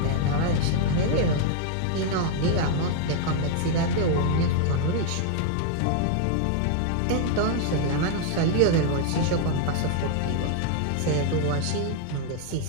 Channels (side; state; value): both; different; correlation 0.00